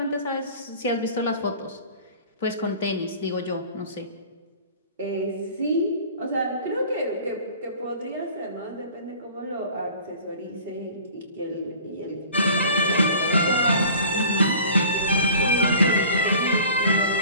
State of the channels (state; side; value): inverted; both; correlation -0.45